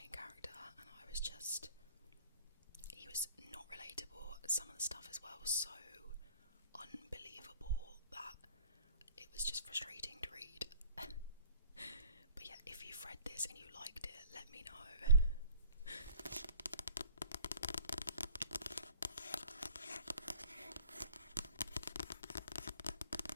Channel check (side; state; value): both; inverted; correlation -0.49